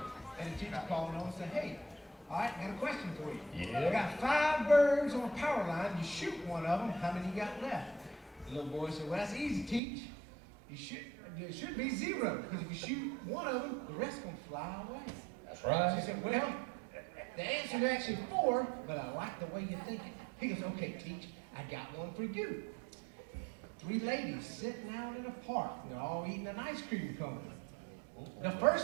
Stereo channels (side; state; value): left; drops out; at 9.8 s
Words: and the teacher called him and said, hey, all right, I got a question for you. Yeah. I got 5 birds on a power line. You shoot one of them, how many you got left? The little boy said, well, that's easy, teach. It should be 0, because if you shoot one of them, the rest gonna fly away. That's right. She said, well, the answer is actually 4, but I like the way you're thinking. He goes, okay, teach, I got one for you. 3 ladies sitting out in a park. They're all eating an ice cream cone. The